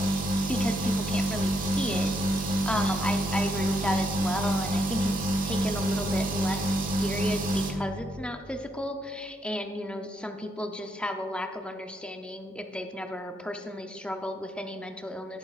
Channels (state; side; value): normal; both; correlation 0.77